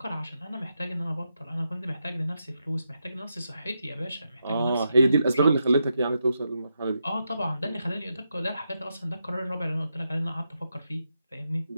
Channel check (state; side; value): inverted; both; correlation -0.85